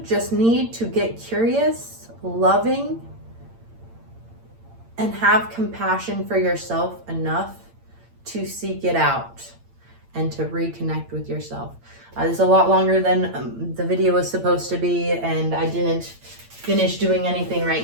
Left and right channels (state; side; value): late; left; 8.8 ms